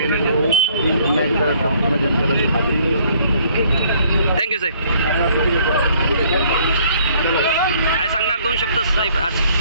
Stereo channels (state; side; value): inverted; both; correlation -0.62